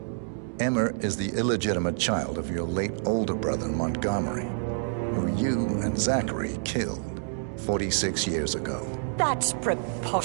Emma is the illegitimate child of your late older brother Montgomery, who you and Zachary killed 46 years ago. That's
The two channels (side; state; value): left; silent; digital silence